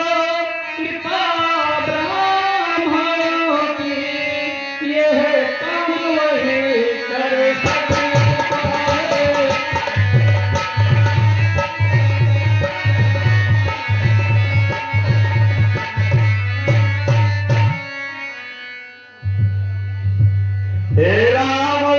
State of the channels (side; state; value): both; identical; correlation 1.00